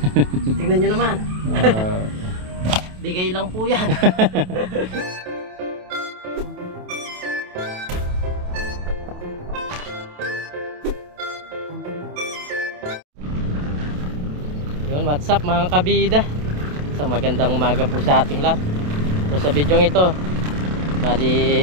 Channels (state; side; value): late; left; 28 ms